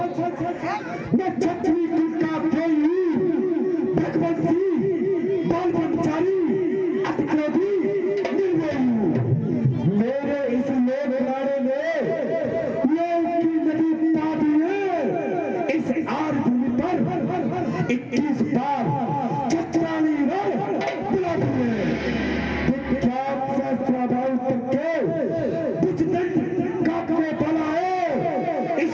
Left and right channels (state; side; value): identical; both; correlation 1.00